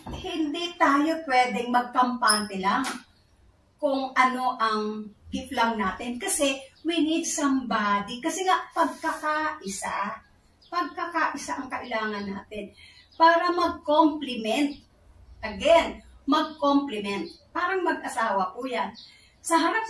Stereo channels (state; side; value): identical; both; correlation 1.00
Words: hindi tayo pwedeng magkampante lang kung ano ang gift lang natin kasi we need somebody. Kasi nga, pagkakaisa ang kailangan natin para mag-complement. Again, mag-complement. Parang mag-asawa po yan. Sa harap